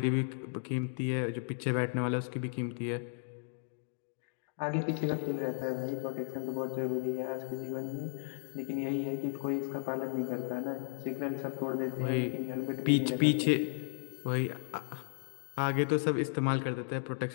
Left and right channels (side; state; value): right; silent; digital silence